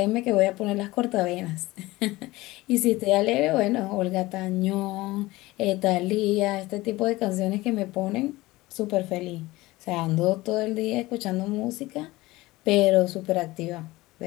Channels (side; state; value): right; quieter; 19.5 dB